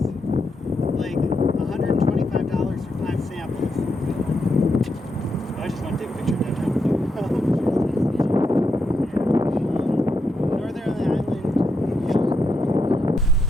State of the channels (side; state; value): both; normal; correlation 0.82